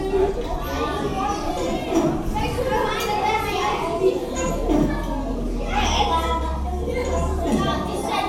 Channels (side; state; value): both; identical; correlation 1.00